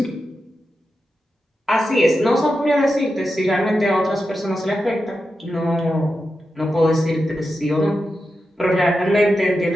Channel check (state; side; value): normal; both; correlation 0.89